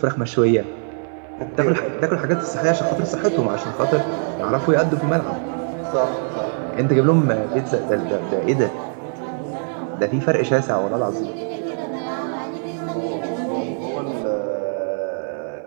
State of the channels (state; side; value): silent; left; 57 dB below the other